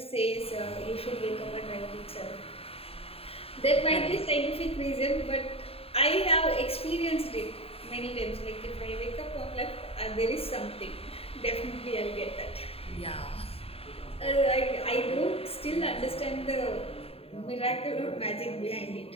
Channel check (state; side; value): late; right; 0.28 ms